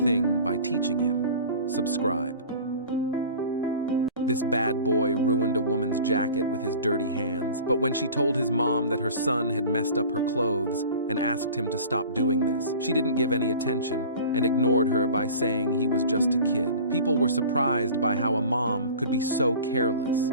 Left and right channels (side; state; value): both; inverted; correlation -0.40